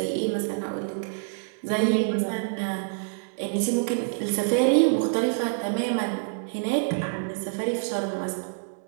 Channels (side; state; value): left; silent; digital silence